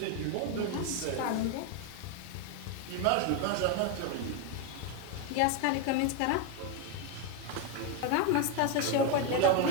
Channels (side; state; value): both; different; correlation 0.01